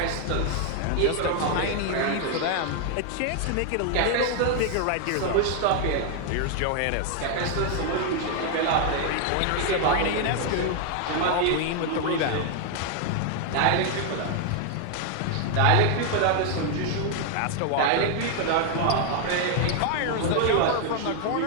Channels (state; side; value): different; both; correlation 0.00